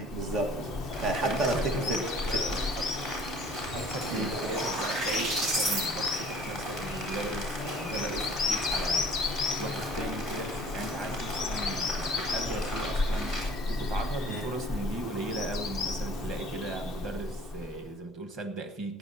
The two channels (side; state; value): both; normal; correlation 0.51